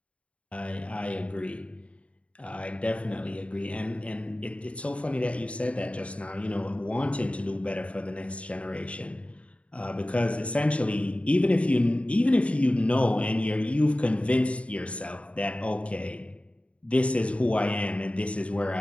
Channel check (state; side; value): late; right; 0.063 ms